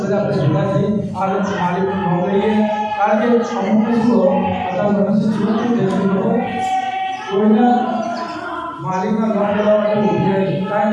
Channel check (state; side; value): identical; both; correlation 1.00